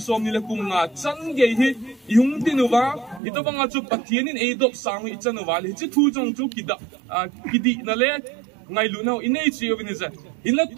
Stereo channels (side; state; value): left; drops out; at 3.2 s